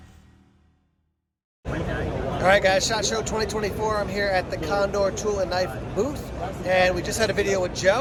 All right, guys, SHOT Show 2024. I'm here at the Condor Tool and Knife booth, and we just had a video with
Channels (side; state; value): both; identical; correlation 1.00